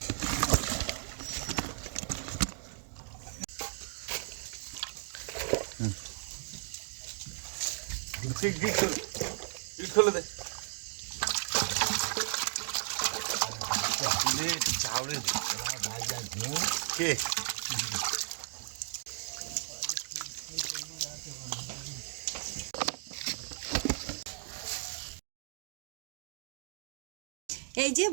খুলে দে কে এই যে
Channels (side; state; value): left; silent; 54 dB below the other